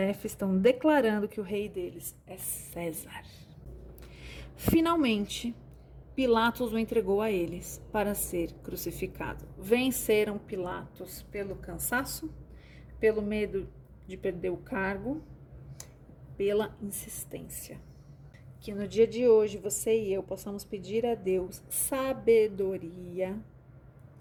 estão declarando que o rei deles é César. Finalmente, Pilatos o entregou a eles para ser crucificado. Venceram Pilatos pelo cansaço, pelo medo de perder o cargo, pela insistência. Que no dia de hoje você e eu possamos pedir a Deus sabedoria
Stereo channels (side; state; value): both; identical; correlation 1.00